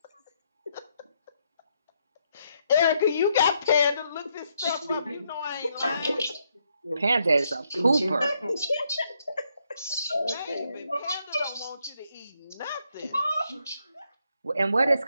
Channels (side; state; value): both; inverted; correlation -0.76